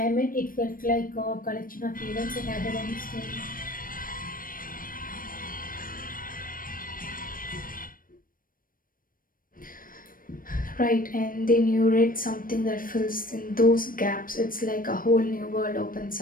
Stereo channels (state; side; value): late; right; 0.41 ms